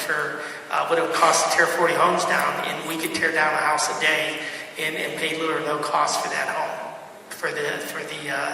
what it would cost to tear 40 homes down, and we could tear down a house a day and pay little or no cost for that home, for the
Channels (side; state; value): both; identical; correlation 1.00